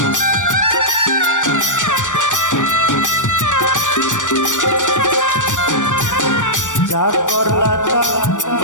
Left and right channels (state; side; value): late; right; 0.87 ms